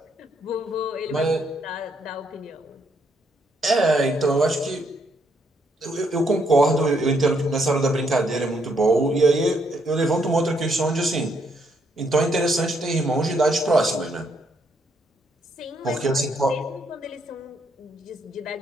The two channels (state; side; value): normal; both; correlation 0.73